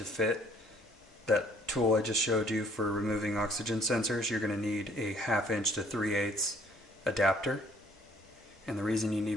fit that tool I just showed you for removing oxygen sensors, you're going to need a 1/2 inch to 3/8 adapter. And the reason you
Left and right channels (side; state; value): both; normal; correlation 0.60